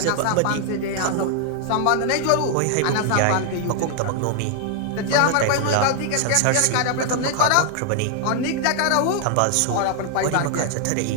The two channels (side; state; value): both; different; correlation 0.00